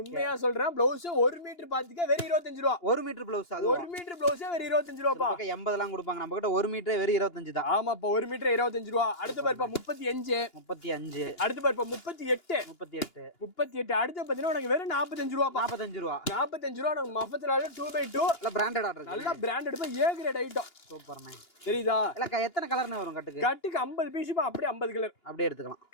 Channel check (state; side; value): late; right; 2.9 ms